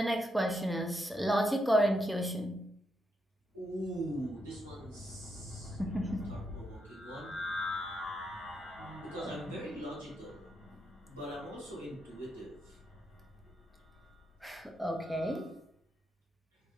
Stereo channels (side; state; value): both; normal; correlation 0.81